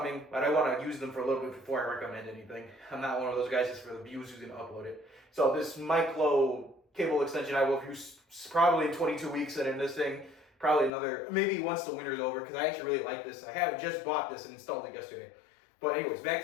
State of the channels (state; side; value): drops out; right; at 10.9 s